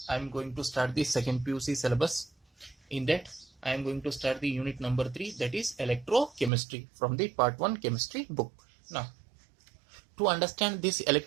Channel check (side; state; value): left; drops out; at 6.5 s